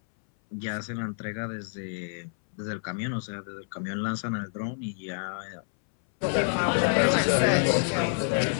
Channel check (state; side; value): silent; right; 59 dB below the other